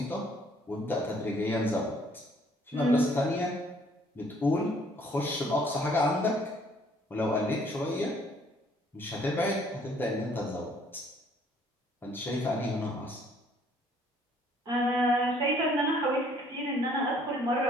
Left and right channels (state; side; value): normal; both; correlation 0.61